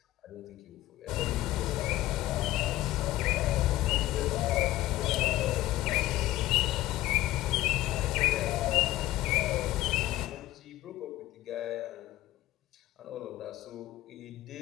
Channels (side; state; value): right; quieter; 15.9 dB